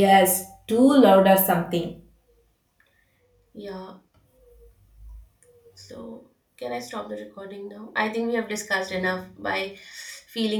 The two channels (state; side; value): identical; both; correlation 1.00